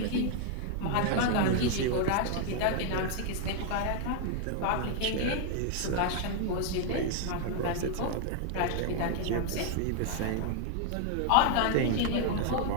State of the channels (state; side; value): different; both; correlation 0.00